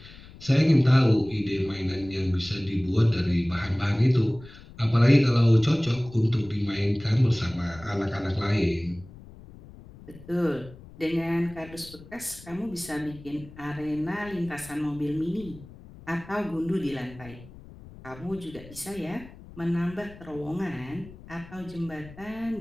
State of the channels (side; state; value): left; noise; rumble, 19 dB below the sound